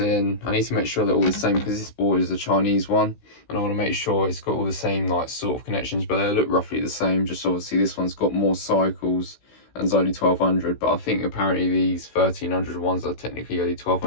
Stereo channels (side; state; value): right; late; 16 ms